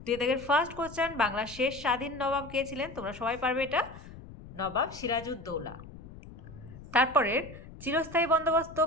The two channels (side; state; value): left; noise; rumble, 16 dB below the sound